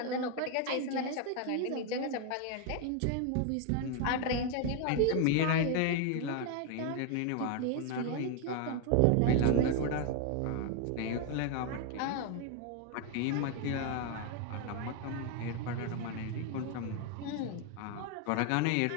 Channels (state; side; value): different; both; correlation 0.01